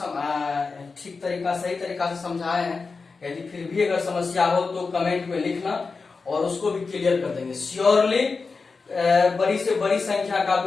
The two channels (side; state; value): right; quieter; 4.4 dB